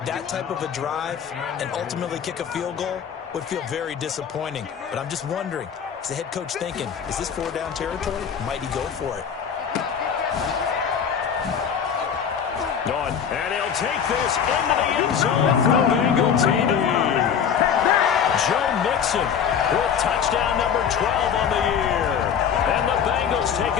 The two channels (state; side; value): quieter; right; 7.7 dB